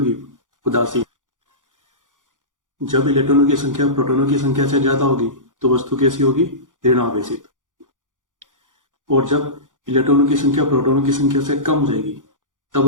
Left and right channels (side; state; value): left; late; 0.88 ms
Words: उदासीन। जब इलेक्ट्रॉनों की संख्या प्रोटॉनों की संख्या से ज्यादा होगी तो वस्तु कैसी होगी? ऋणावेशित। और जब इलेक्ट्रॉनों की संख्या प्रोटॉनों की संख्या से कम हो जाएगी तब